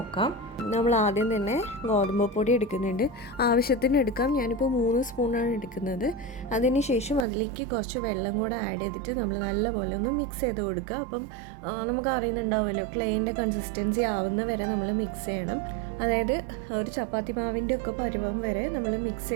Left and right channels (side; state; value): left; drops out; at 7.2 s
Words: നമ്മൾ ആദ്യം തന്നെ ഗോതമ്പ് പൊടി എടുക്കുന്നുണ്ട്. ആവശ്യത്തിന് എടുക്കാം. ഞാനിപ്പോൾ 3 സ്പൂണാണ് എടുക്കുന്നത്. അതിന് ശേഷം അതിലേക്ക് കുറച്ച് വെള്ളം കൂടെ ആഡ് ചെയ്തിട്ട് നമ്മൾ നല്ലപോലെ ഒന്ന് മിക്സ് ചെയ്ത് കൊടുക്കുക. അപ്പം നമുക്ക് അറിയുന്നുണ്ടാവുമല്ലോ, ക്ലേൻ്റെ കൺസിസ്റ്റൻസി ആവുന്ന വരെ നമ്മൾ മിക്സ് ചെയ്യണം. അതായത് ഒരു ചപ്പാത്തി മാവിൻ്റെ ഒക്കെ പരുവം വരെ നമ്മൾ മിക്സ്